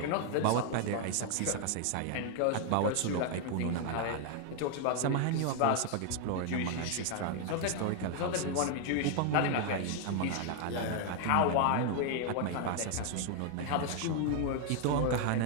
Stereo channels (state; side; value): different; both; correlation 0.00